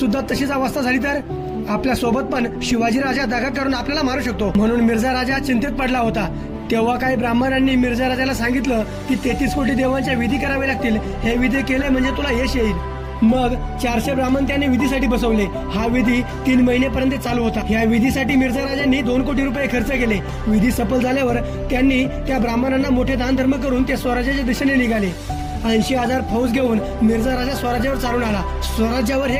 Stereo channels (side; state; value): both; identical; correlation 1.00